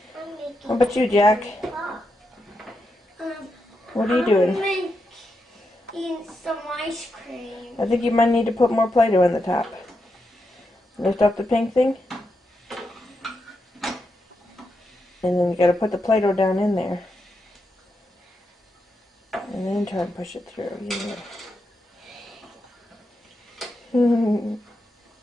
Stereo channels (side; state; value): both; normal; correlation 0.85